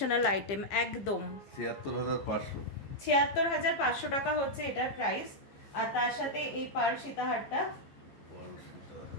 আইটেম, একদম 76,500। 76,500 টাকা হচ্ছে এটার প্রাইস। আর তার সাথে এই পার্ল সীতাহারটা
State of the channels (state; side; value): late; right; 15 ms